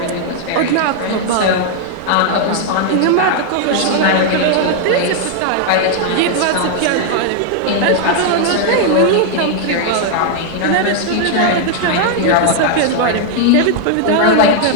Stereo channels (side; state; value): both; different; correlation 0.00